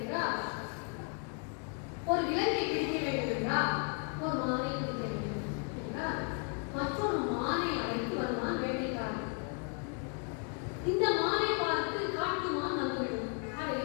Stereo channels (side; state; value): right; quieter; 38.5 dB